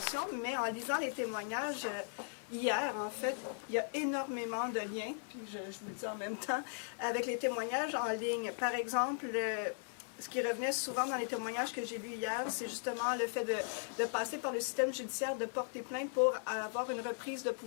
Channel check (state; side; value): silent; right; digital silence